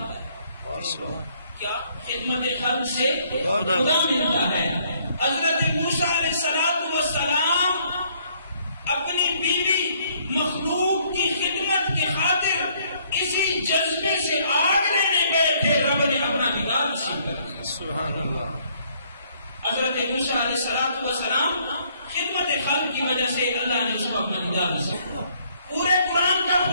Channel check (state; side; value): inverted; both; correlation -0.65